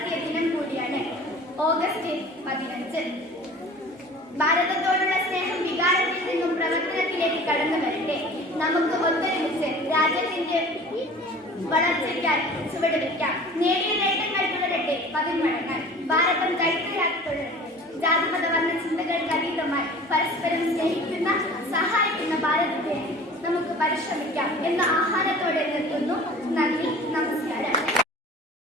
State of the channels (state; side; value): normal; both; correlation 0.43